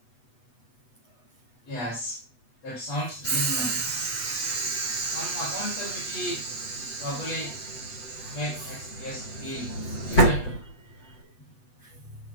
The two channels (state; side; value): late; right; 8.1 ms